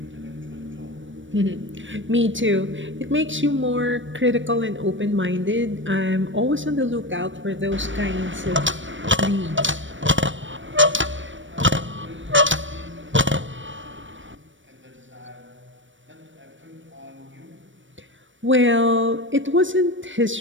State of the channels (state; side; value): late; left; 0.56 ms